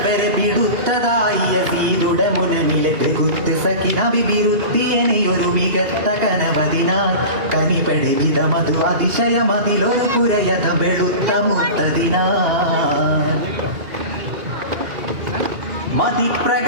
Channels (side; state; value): left; late; 2.4 ms